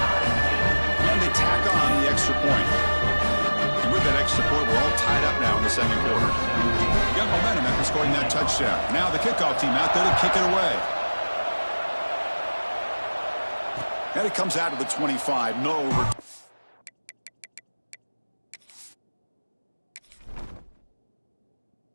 And they tack on the extra point. And with that extra point, we're all tied up now in the second quarter. You got momentum after scoring that touchdown. Now the kickoff team out there to kick it away. And it comes out to the 25. No over.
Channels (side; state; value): both; inverted; correlation -1.00